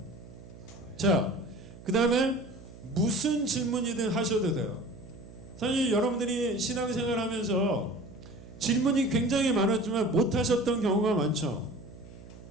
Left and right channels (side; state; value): right; noise; hum, 17 dB below the sound